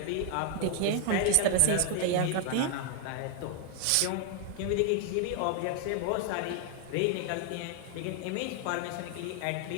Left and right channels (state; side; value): different; both; correlation 0.00